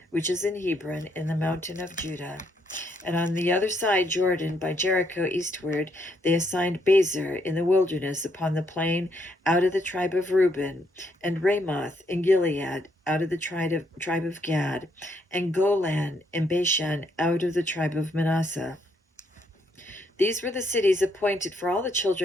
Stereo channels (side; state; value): both; normal; correlation 0.73